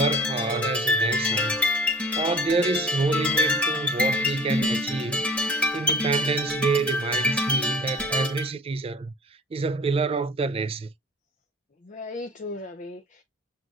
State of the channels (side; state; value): both; normal; correlation 0.46